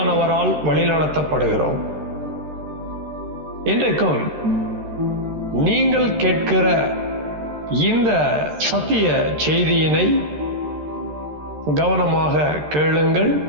வழிநடத்தப்படுகிறோம். இன்றைக்கும் நீங்கள் கேட்கிற இந்த சத்திய செய்தியினை கவனமாக கேளுங்கள்.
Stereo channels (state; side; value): late; left; 13 ms